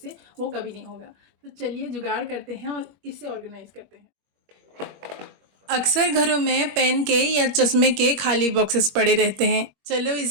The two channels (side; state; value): left; late; 21 ms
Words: वो कभी नहीं होगा। तो चलिए जुगाड़ करते हैं और इसे ऑर्गेनाइज करते हैं। अक्सर घरों में पेन के या चश्मे के खाली बॉक्सेस पड़े रहते हैं। चलो